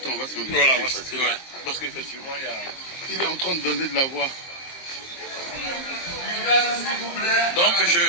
on va se demander. Voilà, parce qu'effectivement, il est en train de donner de la voix. Donc,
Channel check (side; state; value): right; late; 23 ms